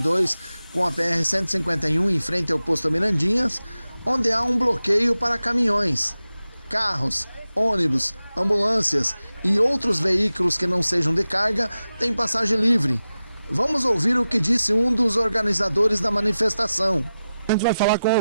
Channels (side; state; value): both; inverted; correlation -0.93